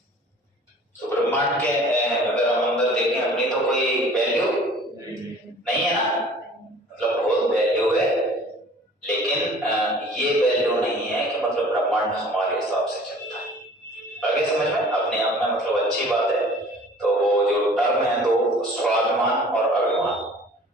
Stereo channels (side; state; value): both; normal; correlation 0.49